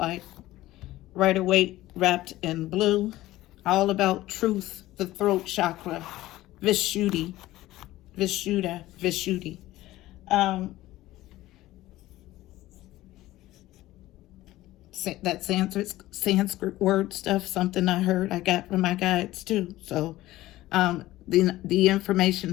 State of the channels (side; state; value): right; quieter; 16.4 dB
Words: Rider-Waite wrapped in blue. All about truth, the throat chakra. Vishuddha. That Sanskrit word stuff, something I heard, I got from my guides too. So the information